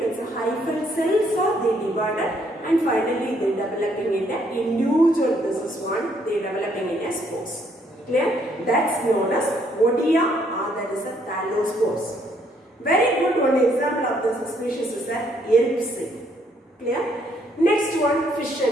it's a hyphal cells are they divided and finally they developing in a individual. This is one they developing in a spores. Clear? That's known as Odia or that is a thallospores. Very good one example of this species is a Yeripsi. Clear? Next one, fission.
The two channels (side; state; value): both; normal; correlation 0.69